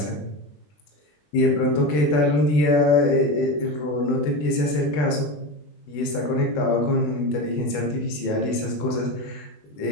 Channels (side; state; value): right; late; 20 ms